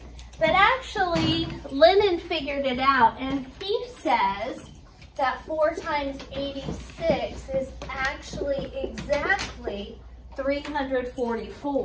But actually, Lennon figured it out, and he says that 4 times 86 is actually exactly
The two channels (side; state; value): both; identical; correlation 1.00